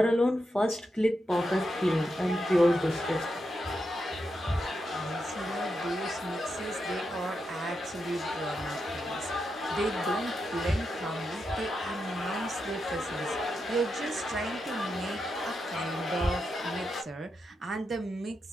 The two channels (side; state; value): both; normal; correlation 0.86